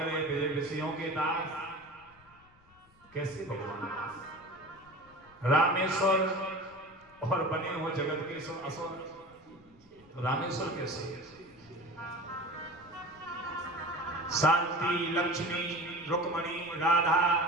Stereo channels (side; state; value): left; noise; rumble, 29 dB below the sound